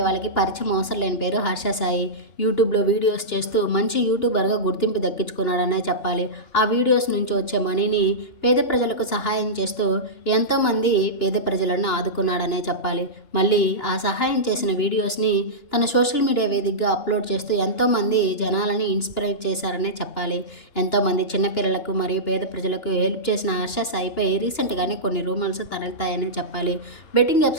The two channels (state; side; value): late; right; 2.9 ms